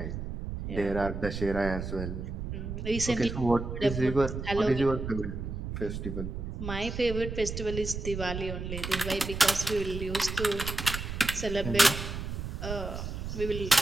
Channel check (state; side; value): noise; right; rumble, 6 dB below the sound